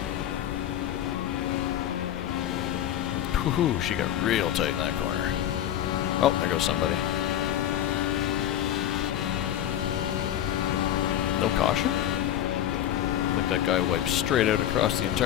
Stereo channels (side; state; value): right; quieter; 11.4 dB